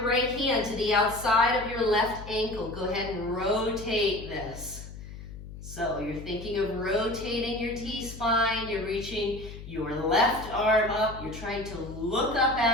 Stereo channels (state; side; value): noise; left; hum, 13 dB below the sound